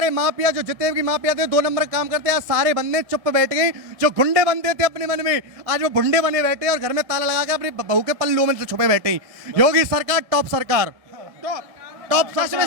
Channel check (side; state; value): left; late; 1.7 ms